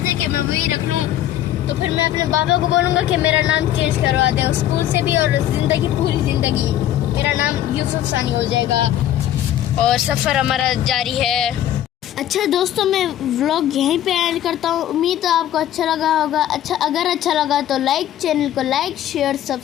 है कि मैं वही रख लूँ। तो फिर मैं अपने बाबा को बोलूँगा कि मेरा नाम चेंज करवा दे स्कूल से भी, और पूरी ज़िंदगी मेरा नाम यूसुफ सानी हो जाएगा और सफ़र हमारा जारी है। अच्छा दोस्तों, मैं व्लॉग यहीं पे एंड करता हूँ। उम्मीद है आपको अच्छा लगा होगा। अगर अच्छा लगा तो चैनल को लाइक शेयर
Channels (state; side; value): quieter; right; 12.0 dB